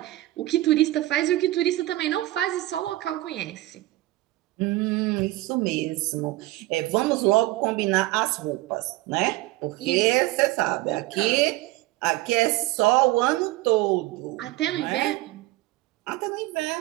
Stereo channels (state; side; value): quieter; left; 18.0 dB